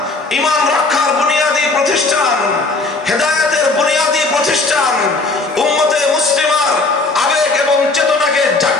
ঈমান রক্ষার বুনিয়াদী প্রতিষ্ঠান, হেদায়েতের বুনিয়াদী প্রতিষ্ঠান, উম্মতে মুসলিমার আবেগ এবং চেতনাকে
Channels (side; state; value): right; quieter; 3.5 dB